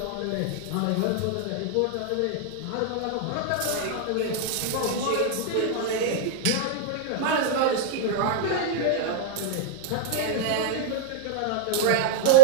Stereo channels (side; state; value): both; different; correlation -0.03